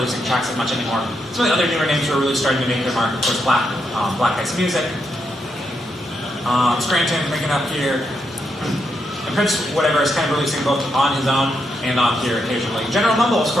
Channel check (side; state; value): both; normal; correlation 0.81